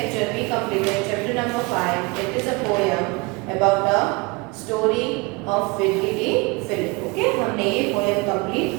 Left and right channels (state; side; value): quieter; left; 26.9 dB